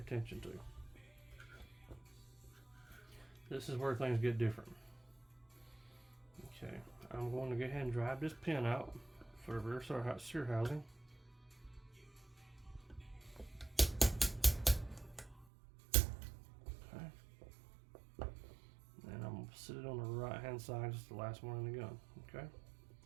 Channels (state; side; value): drops out; left; at 15.5 s